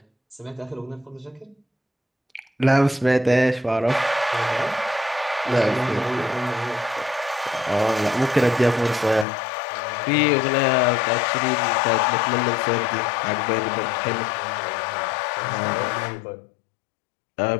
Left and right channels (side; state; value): right; drops out; at 9.2 s